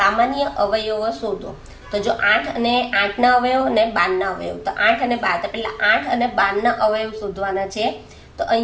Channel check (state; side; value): identical; both; correlation 1.00